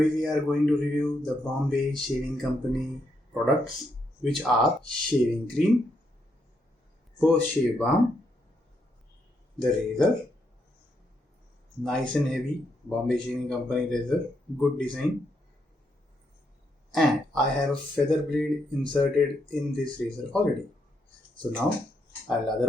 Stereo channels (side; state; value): both; normal; correlation 0.78